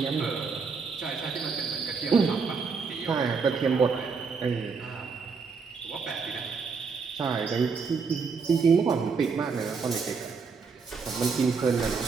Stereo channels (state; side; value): quieter; left; 5.2 dB